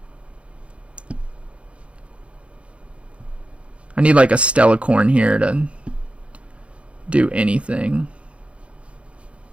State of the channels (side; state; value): left; late; 0.060 ms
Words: I need like a Stellacorn here to do anything.